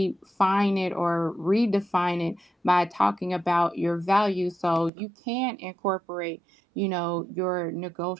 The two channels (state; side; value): drops out; left; at 4.9 s